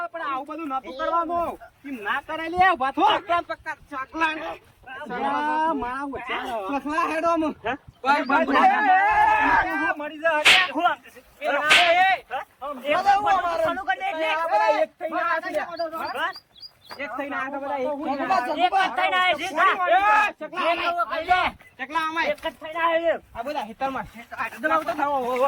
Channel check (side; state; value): both; identical; correlation 1.00